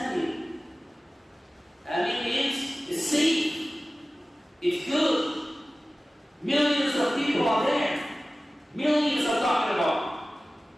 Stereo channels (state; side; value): normal; both; correlation 0.97